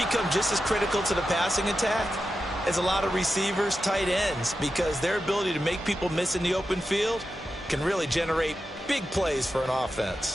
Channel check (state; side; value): normal; both; correlation 0.90